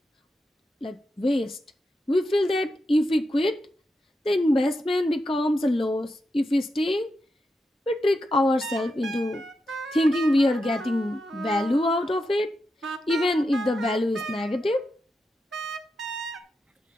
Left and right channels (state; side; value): normal; both; correlation 0.87